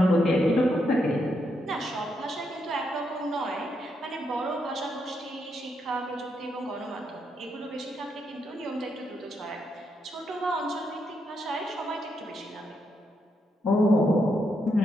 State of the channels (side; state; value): both; normal; correlation 0.80